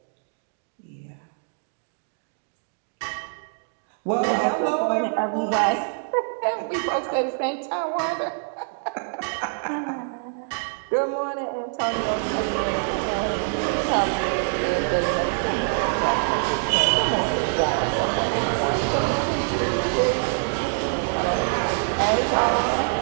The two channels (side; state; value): left; silent; digital silence